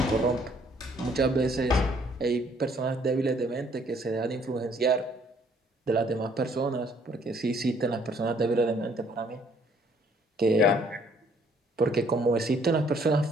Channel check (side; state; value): both; normal; correlation 0.63